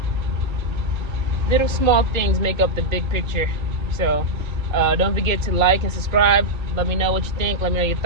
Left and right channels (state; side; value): late; left; 1.3 ms